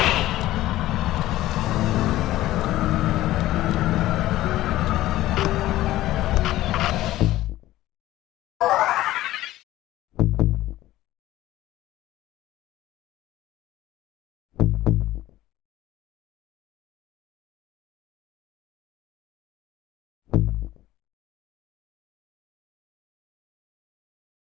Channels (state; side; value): quieter; right; 15.5 dB